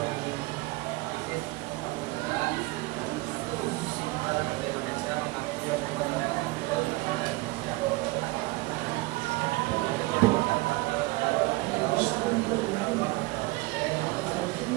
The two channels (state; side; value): quieter; left; 22.2 dB